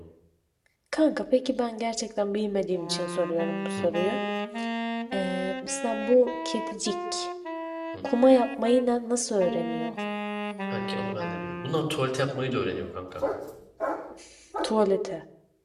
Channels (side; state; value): both; identical; correlation 1.00